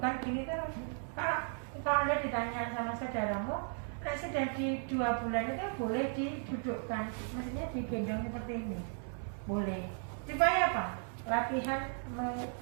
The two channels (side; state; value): left; silent; 54 dB below the other